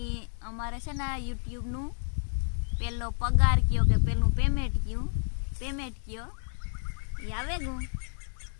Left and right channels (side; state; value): right; silent; 58 dB below the other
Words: અમારે છે ને યુટ્યુબનું પહેલો પગાર કયો કે પહેલું પેમેન્ટ કયો એ આવે ગયું.